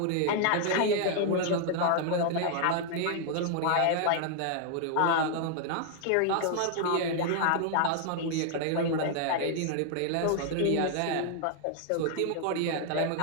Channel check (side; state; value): both; different; correlation 0.00